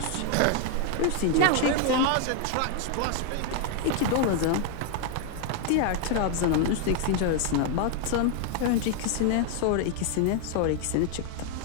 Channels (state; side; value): different; both; correlation 0.00